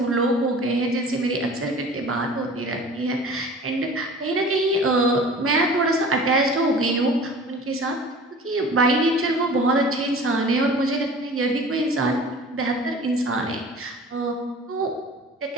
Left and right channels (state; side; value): normal; both; correlation 0.43